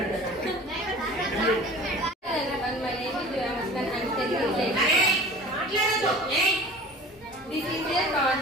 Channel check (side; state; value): both; normal; correlation 0.42